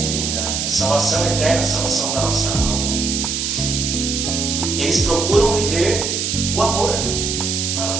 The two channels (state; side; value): noise; right; hiss, 1 dB below the sound